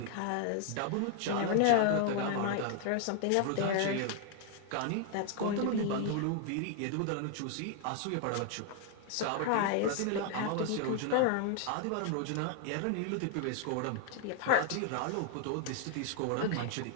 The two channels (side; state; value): both; different; correlation 0.00